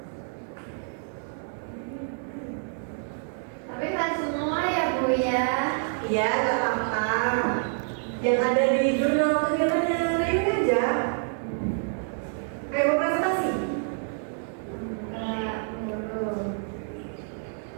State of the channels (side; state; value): left; silent; 60 dB below the other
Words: Tapi kan semua ya Bu ya. Iya, nggak apa-apa. Yang ada di jurnal kegiatannya Rayuni aja. Ayo mau presentasi. Enggak, belum.